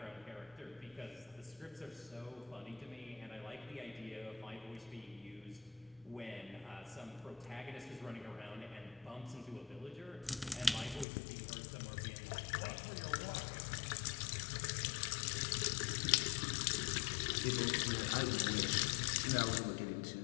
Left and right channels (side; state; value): right; drops out; at 11.1 s